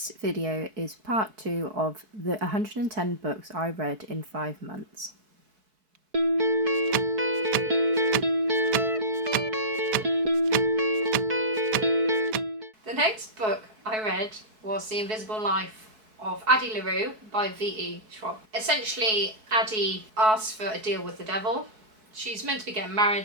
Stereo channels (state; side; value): late; left; 4.6 ms